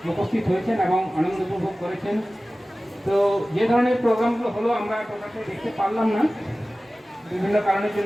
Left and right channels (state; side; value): normal; both; correlation 0.97